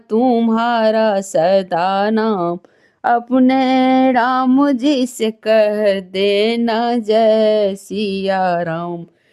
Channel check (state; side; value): identical; both; correlation 1.00